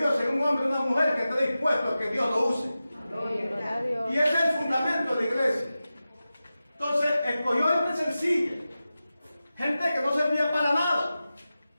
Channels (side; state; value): both; inverted; correlation -0.94